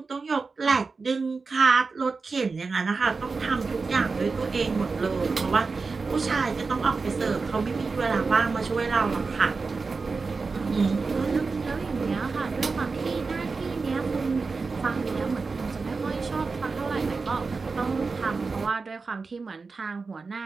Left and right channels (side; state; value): left; quieter; 4.4 dB